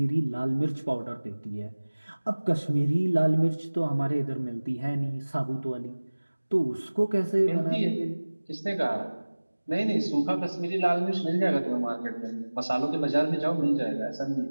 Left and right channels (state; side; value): inverted; both; correlation -1.00